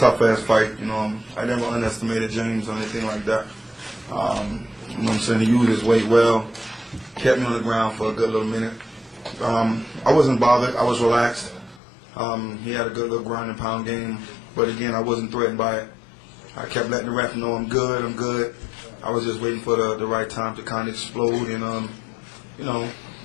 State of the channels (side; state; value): right; drops out; at 11.8 s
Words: fight. I never underestimated James or anything like that. You know what I'm saying? He used his weight well, kept me on the ground for a good little minute. I wasn't bothered. I was relaxed. He had a good little ground and pound game, but again, I wasn't threatened by it. I kept letting the ref know I'm good, I'm good. I was just waiting for the right time to kind of explode, and